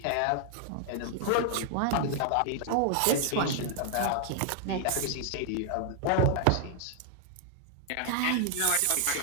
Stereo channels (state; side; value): different; both; correlation 0.00